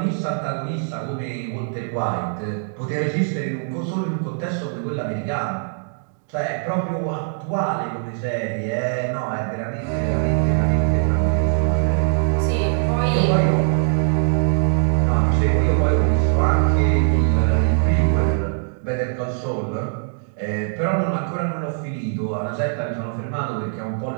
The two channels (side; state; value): left; silent; digital silence